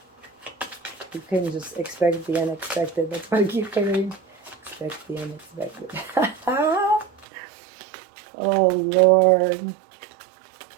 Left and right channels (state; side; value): drops out; left; at 7.2 s